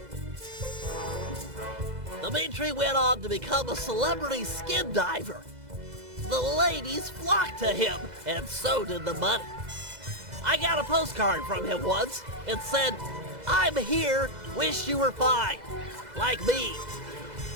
Dimitri went on to become a celebrity skin diver. The ladies flocked to him, and so did the money. I got a postcard from him once. It said, "I'm here, wish you were fine, like me."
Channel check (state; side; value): late; left; 2.0 ms